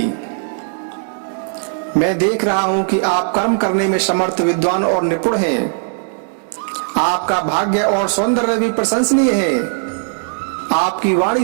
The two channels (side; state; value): left; silent; digital silence